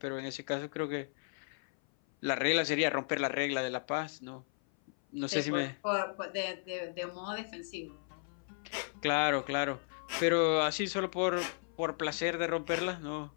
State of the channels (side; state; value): right; silent; 54 dB below the other